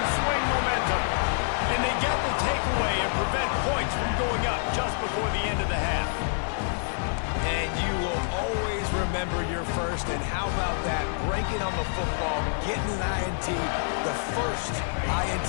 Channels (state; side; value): silent; right; 60 dB below the other